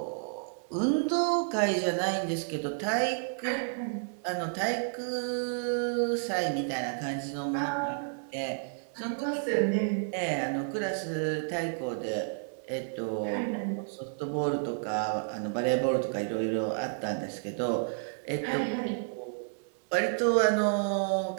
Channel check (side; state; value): left; silent; digital silence